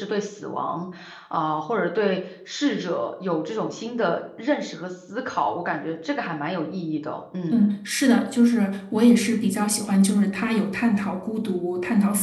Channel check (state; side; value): identical; both; correlation 1.00